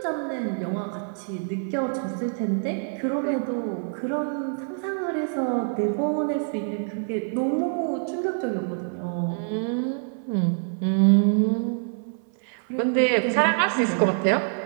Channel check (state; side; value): silent; left; 61 dB below the other